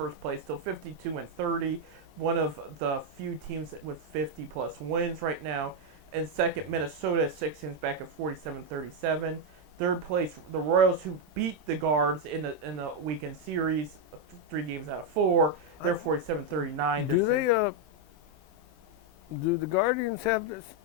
place, still 52-30, one of the few teams with 50-plus wins right now. And second, Minnesota, 6 games back at 47-37. Third place, the Royals, who beat the Guards in the weekend series, 3 games out of 4. They're 47-39. Do the Guardians have this?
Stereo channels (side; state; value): left; late; 26 ms